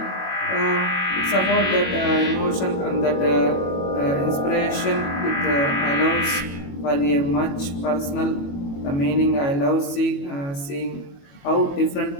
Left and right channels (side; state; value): right; late; 21 ms